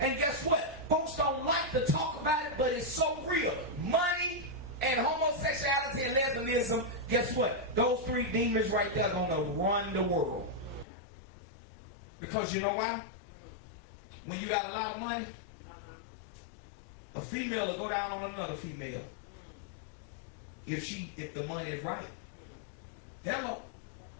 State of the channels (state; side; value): drops out; right; at 10.9 s